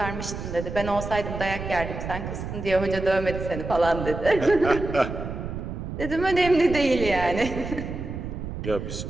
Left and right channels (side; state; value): right; noise; rumble, 7 dB below the sound